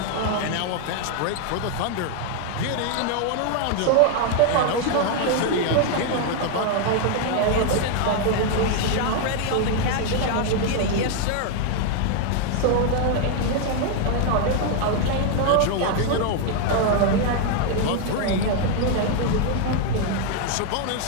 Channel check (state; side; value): different; both; correlation 0.00